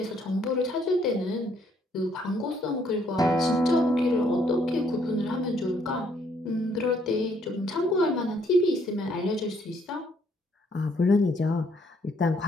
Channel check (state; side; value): normal; both; correlation 0.68